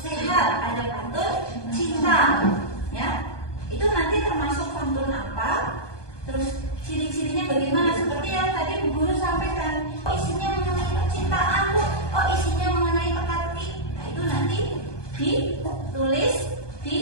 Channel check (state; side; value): late; right; 1.2 ms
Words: ada pantun cinta. Ya, itu nanti termasuk pantun apa? Terus ciri-cirinya bagaimana? Seperti yang tadi Bu Guru sampaikan. Oh, isinya mengenai percintaan, Bu. Oh, isinya mengenai teka-teki. Nah, itu nanti ditulis